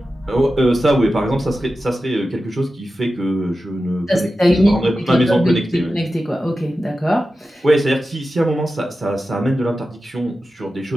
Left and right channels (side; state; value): both; normal; correlation 0.93